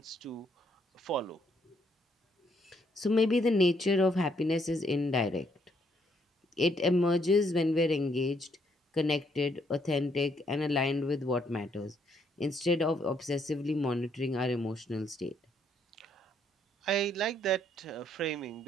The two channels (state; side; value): normal; both; correlation 0.71